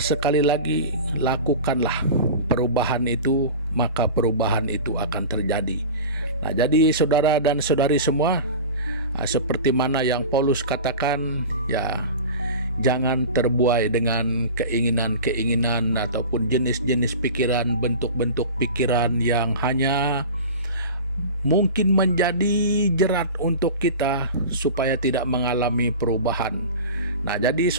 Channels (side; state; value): both; inverted; correlation -0.33